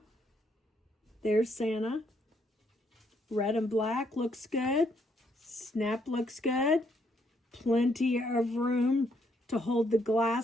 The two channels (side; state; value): both; normal; correlation 0.72